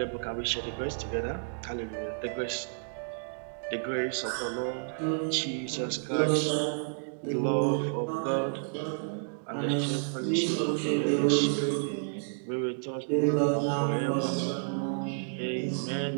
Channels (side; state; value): left; silent; digital silence